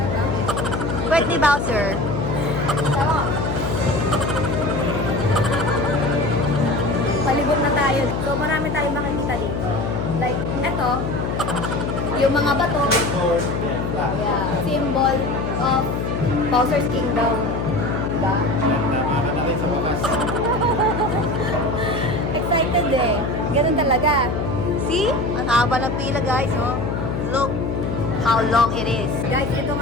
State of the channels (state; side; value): noise; left; hum, 2 dB below the sound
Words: Pwede ni Bowser. Sawa. Palibot na tayo. So marami tayong makikita dito. Like, eto, yung mga bato, yeah, symbol of Bowser's Kingdom. Diba? Tama ka na rin sa wakas. Excited eh. Ganun talaga. See? Ang haba ng pila guys, oh. Look how long it is. Guys, ito